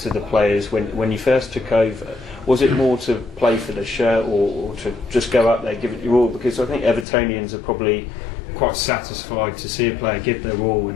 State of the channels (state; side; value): drops out; right; at 7.1 s